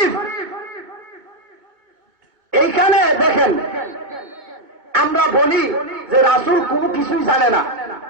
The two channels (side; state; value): left; late; 2.2 ms